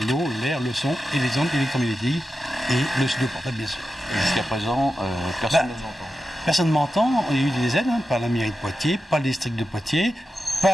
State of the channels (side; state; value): both; normal; correlation 0.91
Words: l'eau, l'air, le son et les ondes électromagnétiques et le studio portable bien sûr. Jusqu'à présent, personne ne nous entend. Personne ne m'entend, il y a eu des aides par la mairie de Poitiers, par le district de Poitiers,